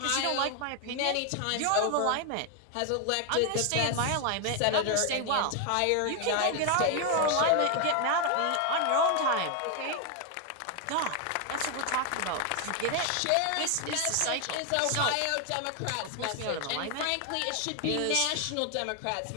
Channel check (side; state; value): both; different; correlation 0.01